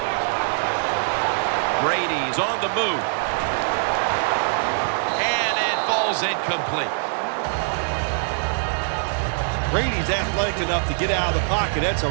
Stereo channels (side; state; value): left; silent; 59 dB below the other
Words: Brady's on the move. Falls incomplete. Brady's athletic enough to get out of the pocket. That's a